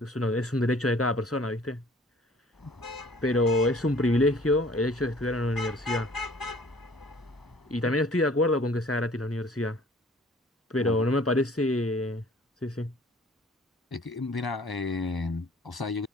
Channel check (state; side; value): normal; both; correlation 0.52